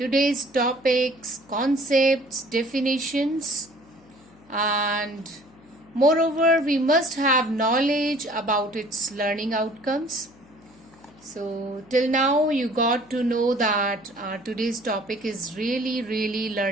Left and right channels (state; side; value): noise; left; hum, 27 dB below the sound